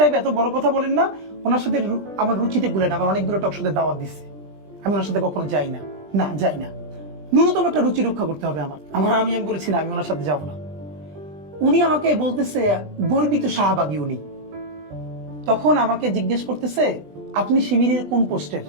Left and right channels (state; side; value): late; left; 20 ms